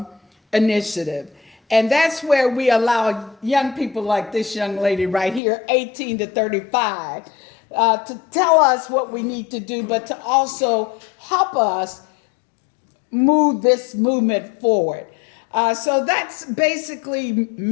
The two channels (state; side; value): drops out; right; at 5.4 s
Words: initiative. And that's where we allow young people like this young lady right here, 18 to 35, to tell us what we need to do, but to also help us move this movement forward. So that's basically